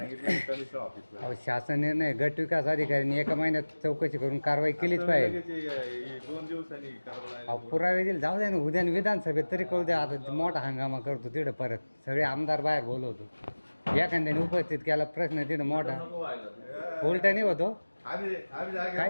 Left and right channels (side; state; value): both; inverted; correlation -1.00